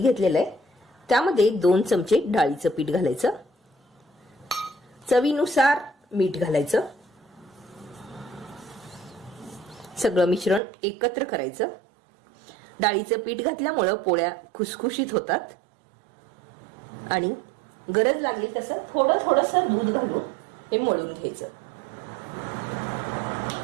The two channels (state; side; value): drops out; left; at 10.6 s